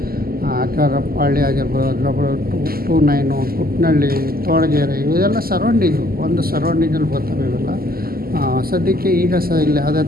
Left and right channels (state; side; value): late; left; 0.43 ms